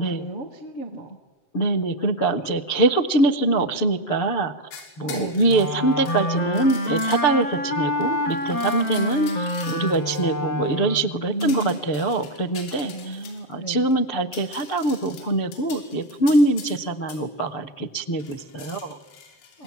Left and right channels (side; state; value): right; late; 7.5 ms